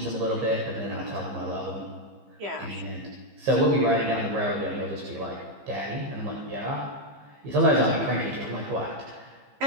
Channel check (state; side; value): late; left; 15 ms